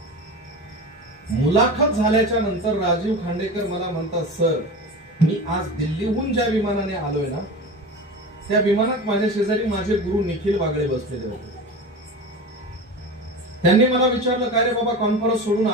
मुलाखत झाल्याच्या नंतर राजीव खांडेकर मला म्हणतात, सर मी आज दिल्लीहून ज्या विमानाने आलोय ना त्या विमानात माझ्या शेजारी माझे गुरु निखिल वागळे बसलेले होते. त्यांनी मला विचारलं, काय रे बाबा कॉन्फरन्स सोडून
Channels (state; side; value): normal; both; correlation 0.30